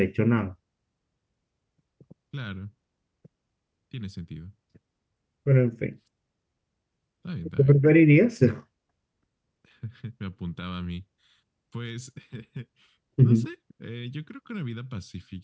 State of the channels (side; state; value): both; identical; correlation 1.00